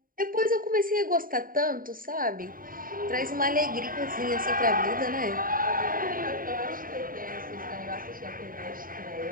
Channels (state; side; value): late; left; 0.41 ms